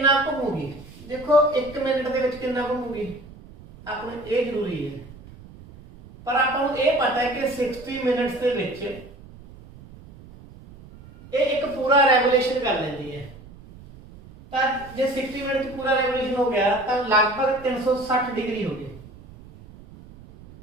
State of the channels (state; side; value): noise; right; rumble, 20 dB below the sound